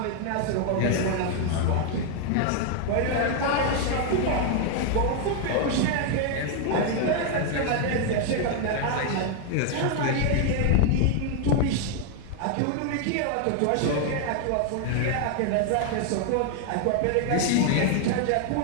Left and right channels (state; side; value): different; both; correlation 0.00